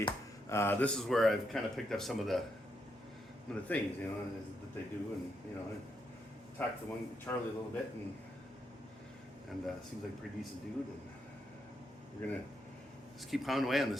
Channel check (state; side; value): normal; both; correlation 0.80